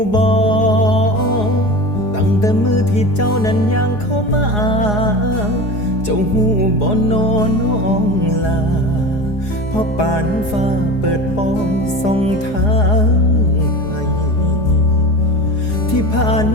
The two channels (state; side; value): late; right; 4.8 ms